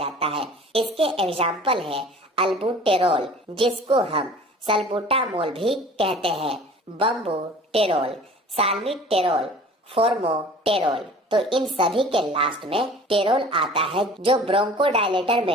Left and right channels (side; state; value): both; normal; correlation 0.45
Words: है। इसके एग्जाम्पल है अल्बुटेरोल, जिसको हम सल्बुटामोल भी कहते हैं, बम्बुटेरोल, साल्मीटेरोल, फोर्मोटेरोल। तो इन सभी के लास्ट में टेरोल आता है, जो ब्रोंकोडायलेटर